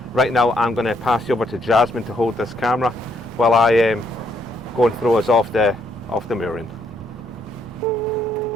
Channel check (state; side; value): normal; both; correlation 0.72